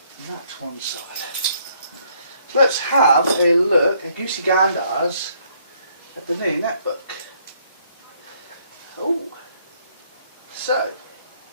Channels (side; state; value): both; inverted; correlation -0.67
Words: And that to one side. So let's have a look at Goosey Gandars at the new netbook. Oh, so